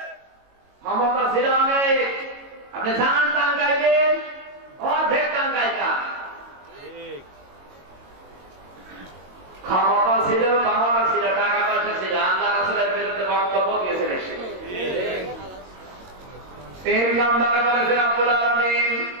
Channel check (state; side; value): late; left; 22 ms